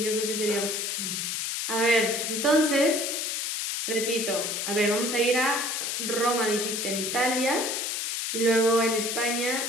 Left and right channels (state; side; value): noise; left; hiss, 2 dB below the sound